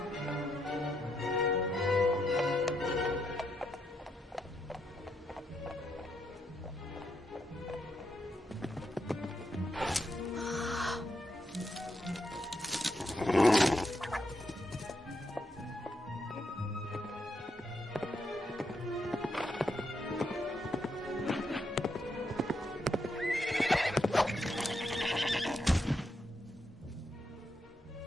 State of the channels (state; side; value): normal; both; correlation 0.80